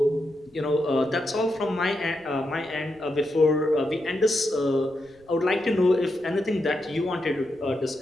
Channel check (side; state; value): right; noise; rumble, 29 dB below the sound